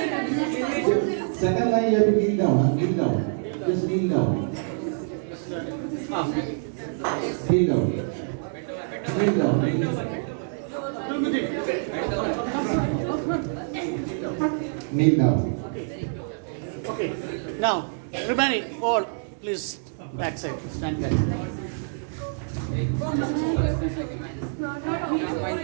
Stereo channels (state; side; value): silent; left; digital silence